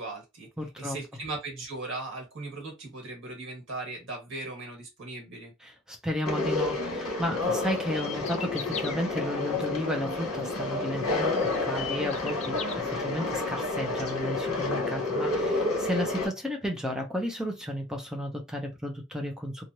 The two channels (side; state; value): both; normal; correlation 0.45